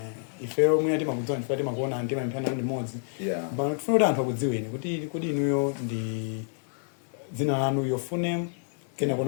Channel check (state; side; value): silent; right; digital silence